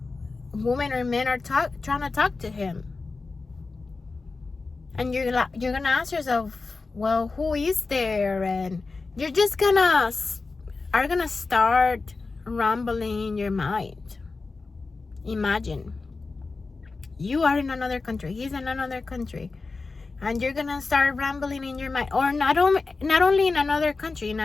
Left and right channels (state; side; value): quieter; right; 4.0 dB